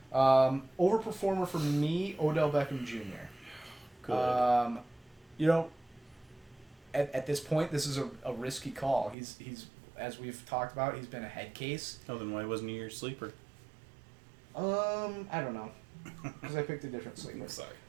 Overperformer for me, Odell Beckham Jr. Good. At this point, this is a risky call. He's as we've talked about, he's been a head case. Oh, then why wasn't he your sleeper? I don't know, because I picked a different sleeper.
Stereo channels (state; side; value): drops out; left; at 9.2 s